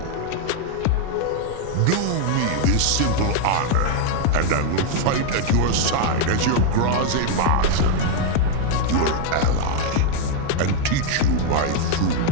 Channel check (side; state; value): both; different; correlation 0.00